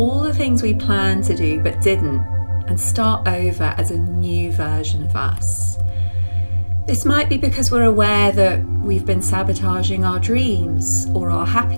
the things we planned to do but didn't, and start over as a new version of us. This might be because we're aware that we've been sabotaging our dreams or our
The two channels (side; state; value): both; inverted; correlation -1.00